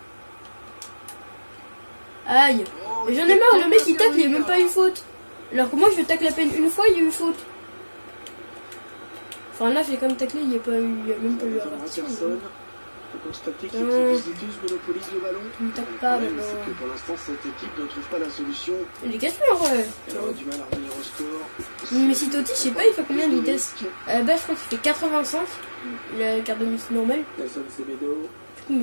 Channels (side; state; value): both; inverted; correlation -1.00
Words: Aïe. J'en ai marre, le mec il tacle, il n'y a même pas une faute. Alors que moi je tacle à peine une fois, il y a eu faute. Enfin là j'ai quand même taclé, il n'y a même pas eu averti. Tu monopolise le ballon. Tu me tacles pas maintenant. Pour l'instant cette équipe ne trouve pas la solution. Il est cassé en vrai. Elle aura du mal à revenir au score. Mais si Totti, je sais pas, il fait combien de vitesse? À la base je crois qu'il fait 85. Il a la carte de Messi normale. Nelson Semedo. Du coup